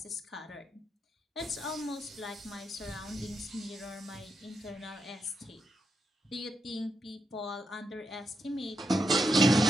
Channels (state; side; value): normal; both; correlation 0.84